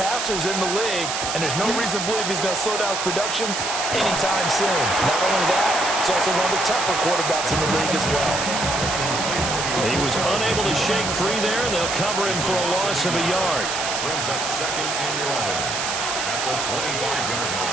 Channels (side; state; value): right; noise; hiss, 2 dB below the sound